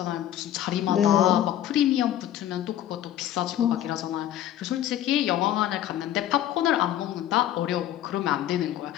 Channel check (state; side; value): quieter; right; 12.0 dB